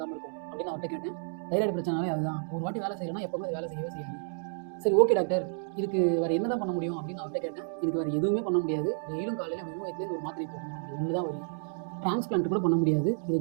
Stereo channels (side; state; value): left; silent; digital silence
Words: இருக்கும் அப்படின்னு அவர்கிட்ட கேட்டேன். தைராய்டு பிரச்சனாலே அதுதான், ஒரு வாட்டி வேலை செய்யணும்னா எப்போவுமே அது வேலை செய்யவே செய்யாது. சரி, ஓகே டாக்டர், இதுக்கு வேறு என்ன தான் பண்ண முடியும் அப்படின்னு அவர்கிட்ட கேட்டேன். இதுக்கு வேறு எதுவுமே பண்ண முடியாது, டெய்லியும் காலையில் வெறும் வயிற்றுலேருந்து ஒரு மாத்திரை போடணும், அது ஒன்று தான் வரும். டிரான்ஸ்பிளான்ட் கூட பண்ண முடியாது, இது